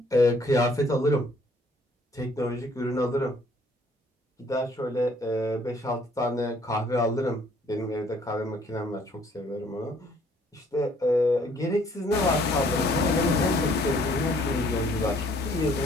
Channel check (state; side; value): normal; both; correlation 0.62